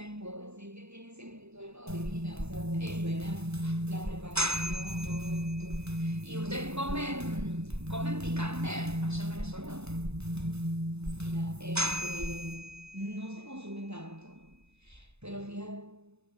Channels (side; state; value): left; late; 0.80 ms